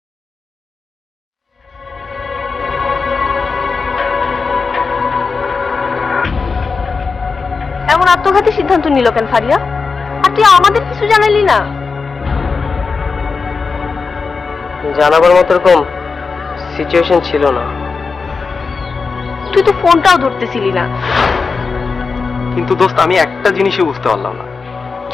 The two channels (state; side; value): quieter; right; 4.7 dB